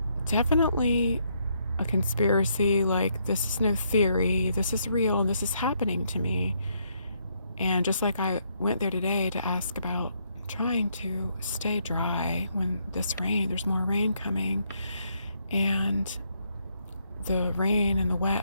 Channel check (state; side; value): inverted; both; correlation -0.74